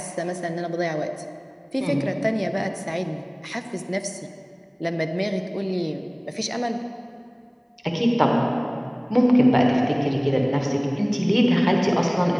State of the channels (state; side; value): identical; both; correlation 1.00